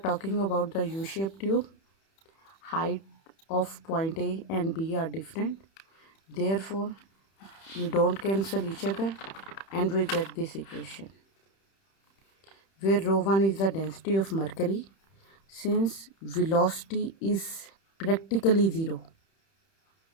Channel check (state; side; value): late; right; 31 ms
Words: about the U-shaped tube, height of point A and B are different. Therefore, we don't cancel each other and we get this equation, where rho 1 is the density of mercury. Since velocity is practically zero